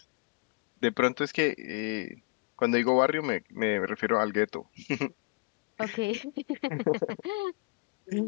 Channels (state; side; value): quieter; right; 29.0 dB